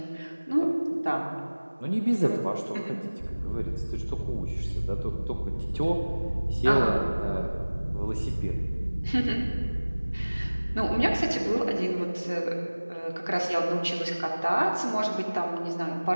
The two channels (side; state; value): both; inverted; correlation -1.00